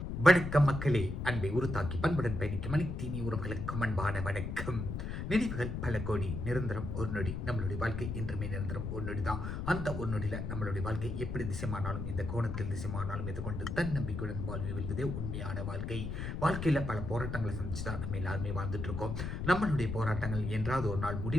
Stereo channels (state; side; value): noise; left; rumble, 4 dB below the sound